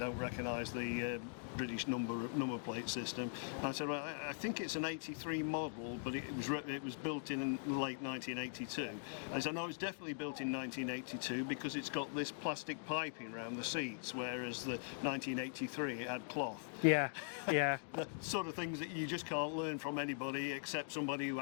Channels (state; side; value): silent; right; digital silence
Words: recognise the British number plate system. And I said, "Well, I think it's an '83 model, but it was built in late 1982." I said, "No, it's definitely built in 1982 because it's got this plastic piping around the seats, whereas the 1983 it had cloth." Yeah, yeah. The sort of things that you just can't learn from anybody except somebody who